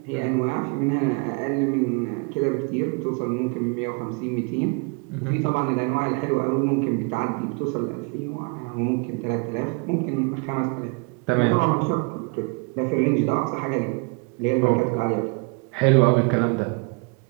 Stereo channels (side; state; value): left; quieter; 33.2 dB